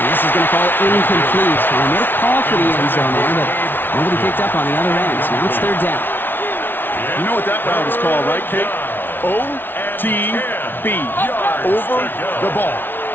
this is going to fall incomplete. They made a call for the end zone there, but nobody picked up on the other end. So now it's third down. You know what that route is called, right, Kate? OTB, over the ball.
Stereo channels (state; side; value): late; right; 0.099 ms